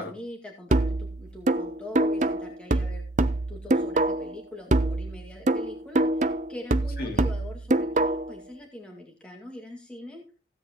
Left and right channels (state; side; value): normal; both; correlation 0.57